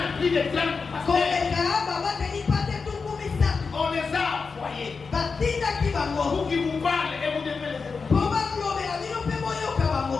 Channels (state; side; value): quieter; right; 4.9 dB